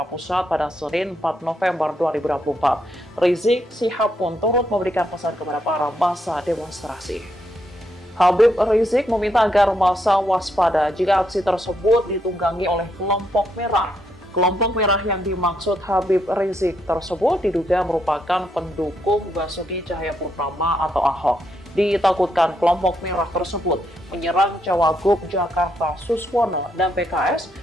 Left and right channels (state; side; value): normal; both; correlation 0.77